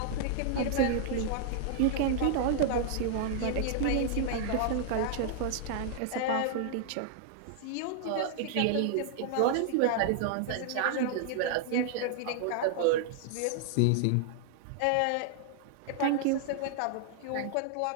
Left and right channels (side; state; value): both; different; correlation -0.01